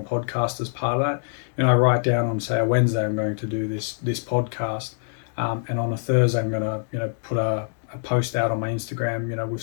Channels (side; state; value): right; silent; digital silence